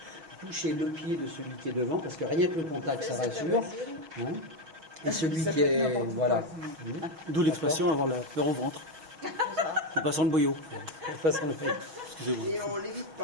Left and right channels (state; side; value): late; left; 6.0 ms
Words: touchez le pied de celui qui est devant, parce que rien que le contact ça rassure. Hein, et celui qui est. Voilà. D'où l'expression avoir la peur au ventre. En passant le boyau. En passant le boyau. Excusez-moi. Et on l'évite